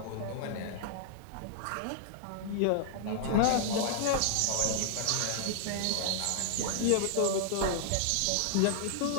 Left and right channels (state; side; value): different; both; correlation -0.01